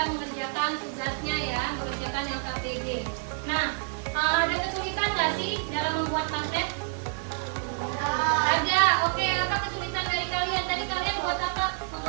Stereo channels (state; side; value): silent; left; 59 dB below the other